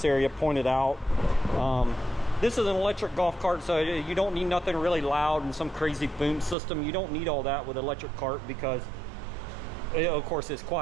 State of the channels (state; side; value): drops out; left; at 6.6 s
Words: area, pointed out. This is an electric golf cart, so you don't need nothing really loud and some crazy boom system. You don't need all that with an electric cart because, of course, it's